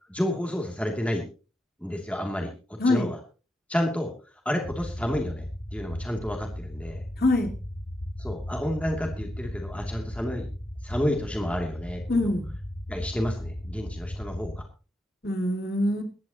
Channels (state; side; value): normal; both; correlation 0.85